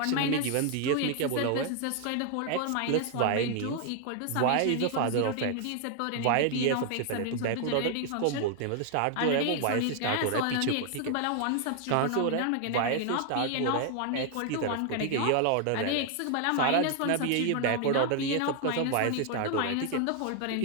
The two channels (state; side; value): different; both; correlation 0.00